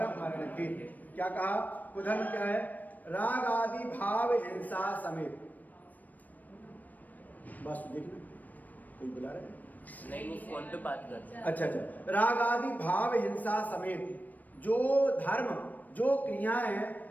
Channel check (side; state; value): right; late; 0.082 ms